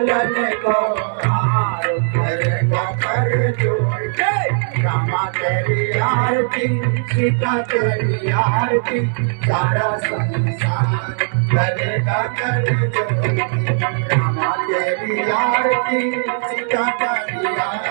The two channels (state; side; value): silent; left; digital silence